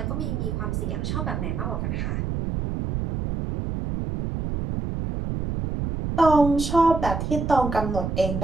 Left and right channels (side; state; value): right; noise; rumble, 3 dB below the sound